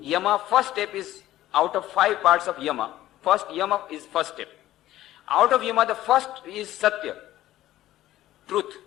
first step is out of 5 parts of yama. First yama is first step. Out of yama, the first is satya, truth.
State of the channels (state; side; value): quieter; right; 14.4 dB